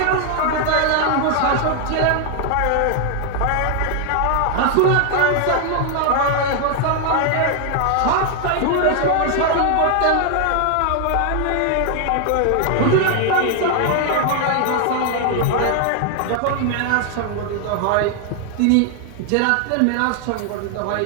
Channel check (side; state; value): both; different; correlation 0.00